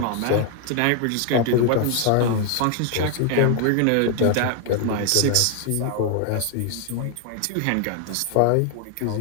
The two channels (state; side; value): different; both; correlation 0.00